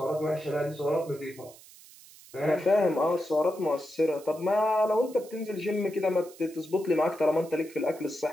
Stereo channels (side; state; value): right; noise; hiss, 21 dB below the sound